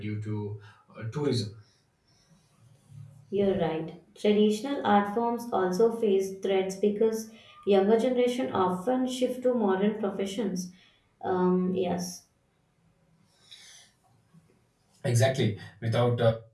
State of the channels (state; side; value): identical; both; correlation 1.00